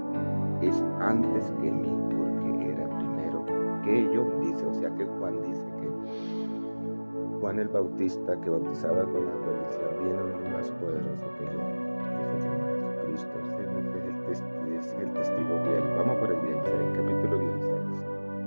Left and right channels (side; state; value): both; inverted; correlation -1.00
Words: es antes que mí, porque era primero que yo. Dice, o sea que Juan dice que Juan el Bautista, que bautizaba con agua, decía: viene uno más poderoso que yo, que se llama Jesucristo. Ese es el testigo fiel. Vamos por el 16, capítulo 16,